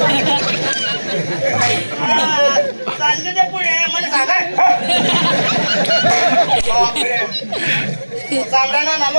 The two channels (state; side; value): inverted; both; correlation -1.00